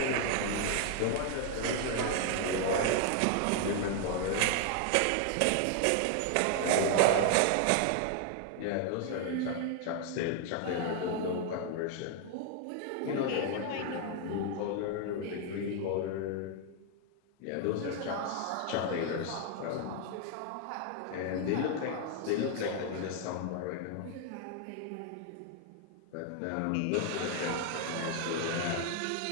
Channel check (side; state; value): both; different; correlation 0.00